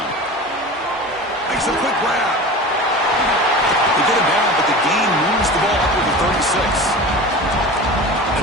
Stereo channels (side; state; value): both; normal; correlation 0.34